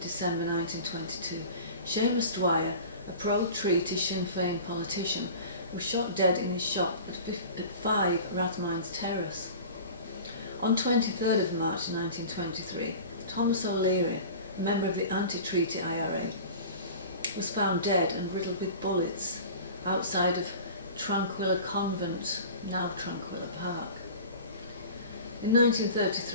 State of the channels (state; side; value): inverted; both; correlation -0.38